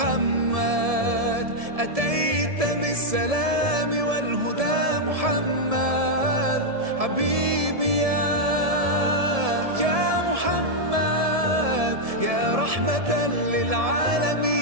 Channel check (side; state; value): left; late; 1.7 ms